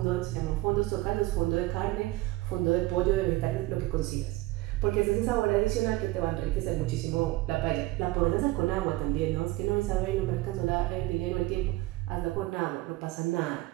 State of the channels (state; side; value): quieter; left; 18.6 dB